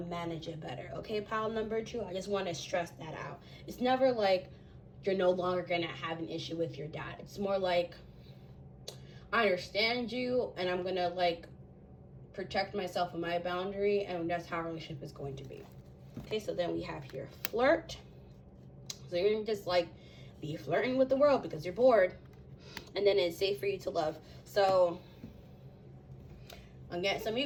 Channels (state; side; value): identical; both; correlation 1.00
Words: manage it better. Okay, pile number 2. I just want to stress that out. It's never like you're no longer gonna have an issue with your dad. It's more like, I understand you, and I'm gonna like protect myself and my boundary, and that's how our relationship is going to be. Okay, so then we have here flirt. So you're gonna just like be flirting with the world because you're bored, and then it's safe for you to love. So again, some of you